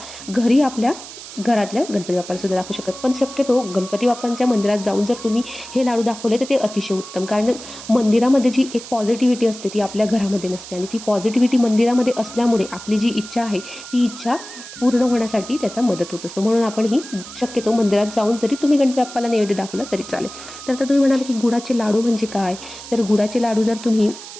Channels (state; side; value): noise; right; hiss, 14 dB below the sound